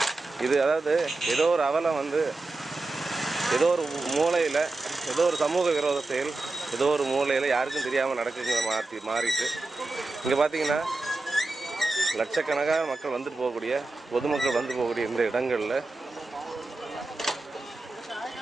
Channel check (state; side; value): quieter; left; 3.2 dB